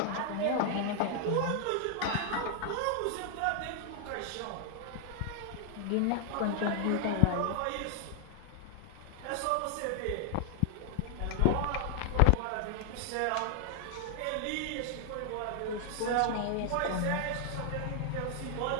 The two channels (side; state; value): both; different; correlation 0.00